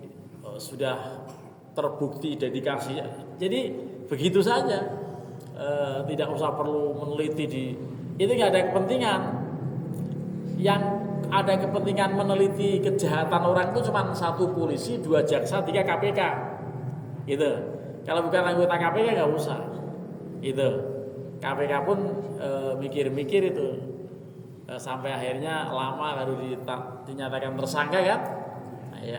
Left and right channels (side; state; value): both; identical; correlation 1.00